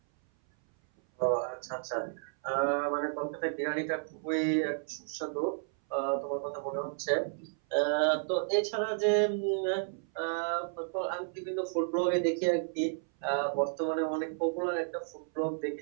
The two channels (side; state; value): left; silent; 56 dB below the other